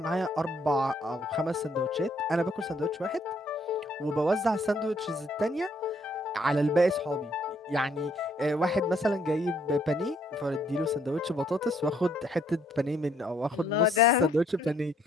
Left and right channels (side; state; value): both; normal; correlation 0.67